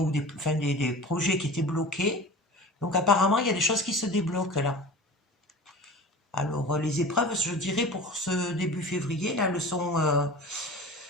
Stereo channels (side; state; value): both; normal; correlation 0.37